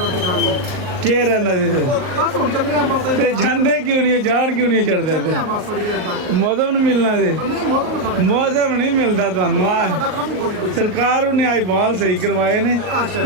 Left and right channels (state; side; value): late; left; 38 ms